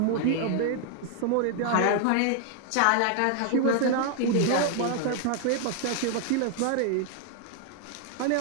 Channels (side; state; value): both; different; correlation 0.00